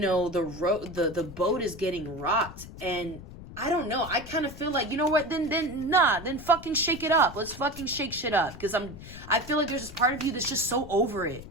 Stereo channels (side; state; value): left; noise; rumble, 14 dB below the sound